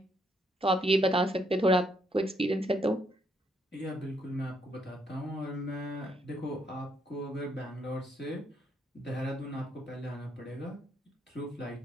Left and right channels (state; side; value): normal; both; correlation 0.72